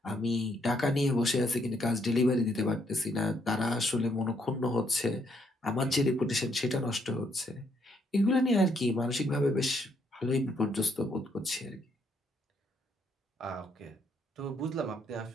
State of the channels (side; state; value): both; normal; correlation 0.72